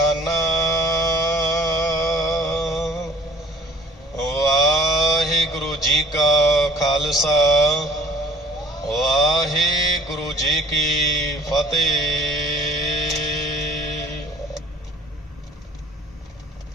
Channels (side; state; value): both; normal; correlation 0.51